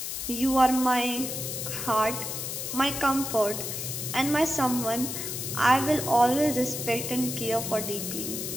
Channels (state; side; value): noise; left; hiss, 5 dB below the sound